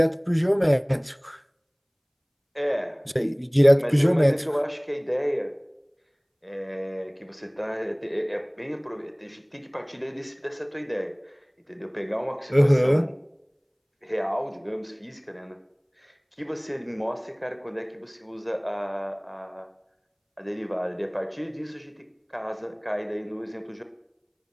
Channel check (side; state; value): both; identical; correlation 1.00